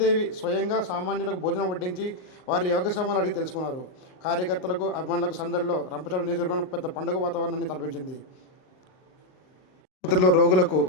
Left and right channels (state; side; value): late; right; 38 ms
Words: స్వయంగా సామాన్యులకు భోజనం వడ్డించి వారి యోగక్షేమాలు అడిగి తెలుసుకున్నారు. కార్యకర్తలకు, అభిమానులకు సందడిలో రంపచోడవరం నియోజకవర్గం పెద్ద పండుగ వాతావరణాన్ని తలపించింది. ఆసుపత్రిలో రోగులకు